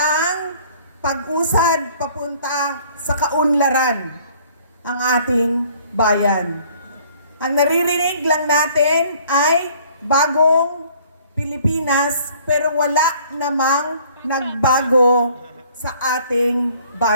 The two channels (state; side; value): inverted; both; correlation -0.56